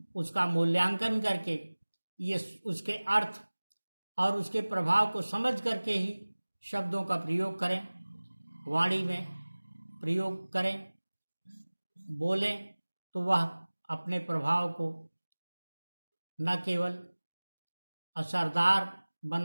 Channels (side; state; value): both; inverted; correlation -1.00